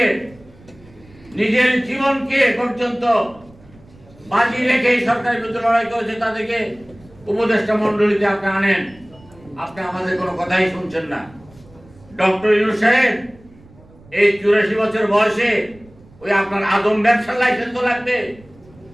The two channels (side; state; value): right; noise; rumble, 25 dB below the sound